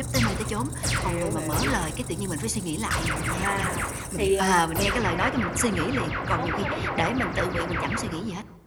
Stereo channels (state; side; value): identical; both; correlation 1.00